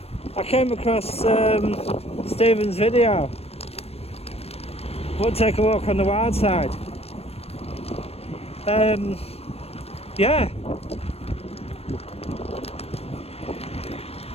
I came across Stephen's video. We'll take a walk on the wild side. Yeah.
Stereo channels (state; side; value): late; right; 0.29 ms